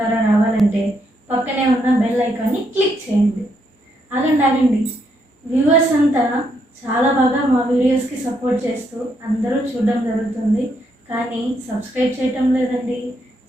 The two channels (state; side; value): normal; both; correlation 0.76